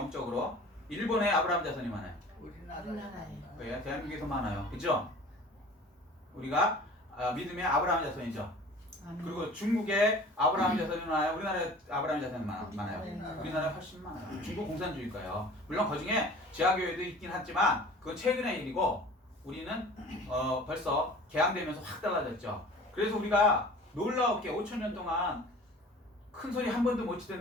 일본에 아브라함 자손이 많아요. 우리나라에. 네, 대한민국에서 많아요. 그죠? 우리가 믿음의 아브라함 자손이죠. 아멘. 그리고 중국에 아브라함 자손이 많아요. 우리나라에 아브라함 자손이 많아요. 우리나라에 훨씬 많아요. 중국 공산주의가요. 물론 그중에 지하교회도 있긴 하지만 그건 최근의 일이고 우리는 벌써 개항되면서 확 달라졌죠. 그래서 우리가 놀라웠게 5천년 동안 큰 소리 한 번도 못 치던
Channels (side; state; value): both; normal; correlation 0.44